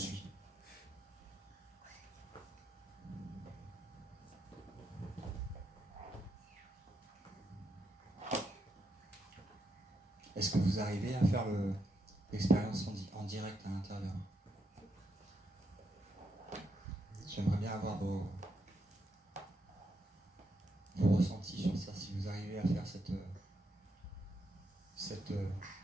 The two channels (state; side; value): normal; both; correlation 0.81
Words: Est-ce que vous arrivez à faire l'expérience en direct à l'intérieur? J'aimerais bien avoir vos ressentis sur ça, si vous arrivez à faire cette